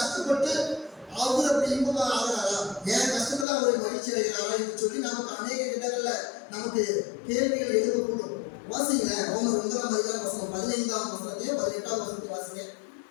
அவர் அப்படி இன்பமா ஆகிறாரா? என் கஷ்டத்துல அவரை மகிழ்ச்சி அடைகிறாரா என்று சொல்லி நமக்கு அநேக இடங்கள்ல நமக்கு கேள்விகள் எழுதக்கூடும். வாசிங்க ரோமர் 9:15 15 18 வாசிங்க.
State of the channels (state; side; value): drops out; right; at 3.5 s